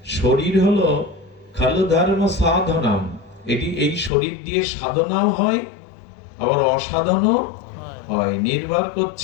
শরীর হলো খালু ধর্ম সাধনাম, এটি এই শরীর দিয়ে সাধনাও হয়, আবার অসাধনও হয়। নির্ভর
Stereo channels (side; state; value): right; drops out; at 4.1 s